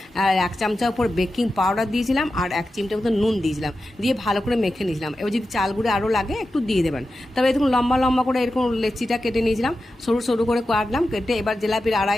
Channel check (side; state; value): both; normal; correlation 0.91